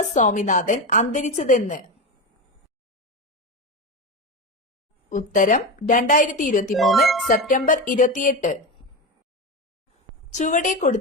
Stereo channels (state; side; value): normal; both; correlation 0.18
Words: സ്വാമിനാഥൻ അന്തരിച്ചതെന്ന്? ഉത്തരം 2023 സെപ്റ്റംബർ 28. ചുവടെ